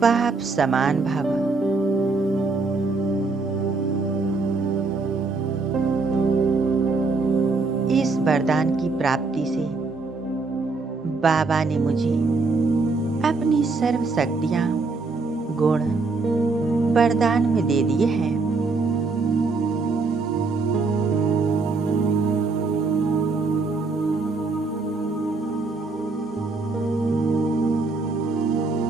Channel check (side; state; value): left; quieter; 3.9 dB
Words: बाप समान भव। इस वरदान की प्राप्ति से बाबा ने मुझे अपनी सर्व शक्तियां गुण वरदान में दे दिए हैं।